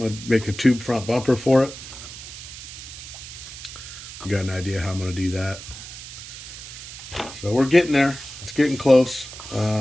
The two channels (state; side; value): noise; right; hiss, 12 dB below the sound